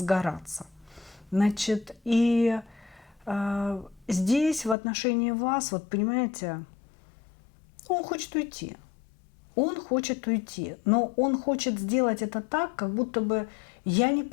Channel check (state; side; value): drops out; right; at 4.8 s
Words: Значит, и здесь в отношении вас, вот понимаете, он хочет уйти. Он хочет уйти, но он хочет сделать это так, как будто бы я не